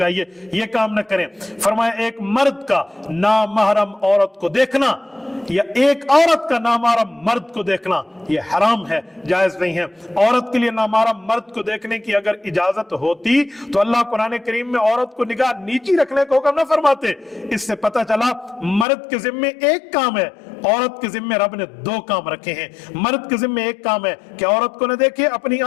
یہ کام نہ کریں۔ فرمایا ایک مرد کا نامحرم عورت کو دیکھنا یا ایک عورت کا نامحرم مرد کو دیکھنا یہ حرام ہے، جائز نہیں ہے۔ عورت کے لیے نامحرم مرد کو دیکھنے کی اگر اجازت ہوتی تو اللہ قرآن کریم میں عورت کو نگاہ نیچی رکھنے کو حکم نہ فرماتے۔ اس سے پتہ چلا مرد کے ذمے ایک کام ہے، عورت کے ذمے رب نے 2 کام رکھے ہیں۔ مرد کے ذمے ایک کام ہے کہ عورت کو نہ دیکھے، اپنی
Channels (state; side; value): drops out; right; at 18.9 s